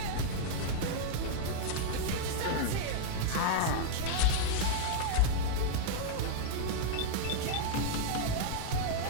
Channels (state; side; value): different; both; correlation -0.01